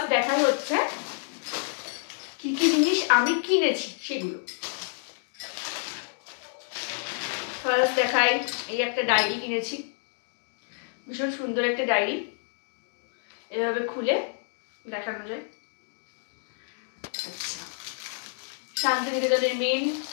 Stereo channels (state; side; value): silent; right; digital silence